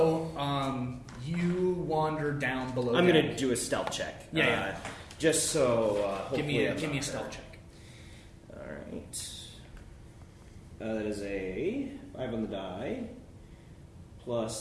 you wander down below. I'm deck. gonna do a stealth check. Yeah. Just so. Give me hopefully a stealth check. All right. That is a 5 on the die,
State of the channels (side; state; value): both; identical; correlation 1.00